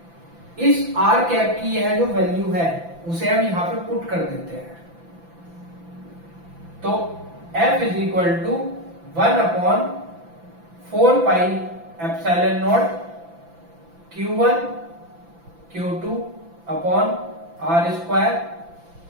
इस आर कैप की यह जो वैल्यू है उसे हम यहां पे पुट कर देते हैं। तो F is equal to 1/4 pi epsilon naught Q1 Q2 upon R square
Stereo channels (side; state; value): left; late; 5.9 ms